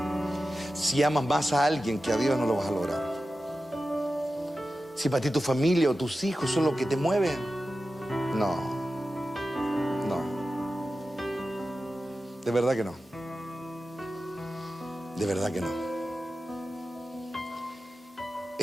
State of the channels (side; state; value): both; normal; correlation 0.93